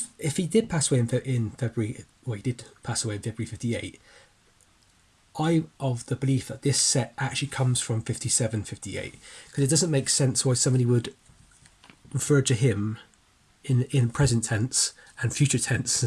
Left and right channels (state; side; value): identical; both; correlation 1.00